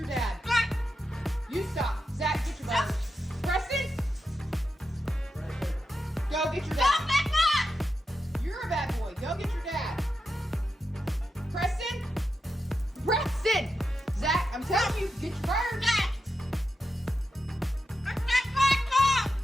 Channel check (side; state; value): both; normal; correlation 0.88